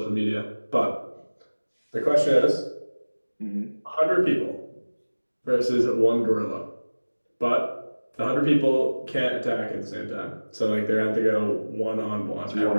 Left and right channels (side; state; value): both; inverted; correlation -1.00